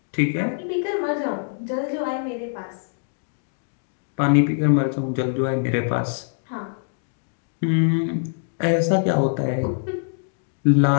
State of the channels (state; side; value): silent; right; digital silence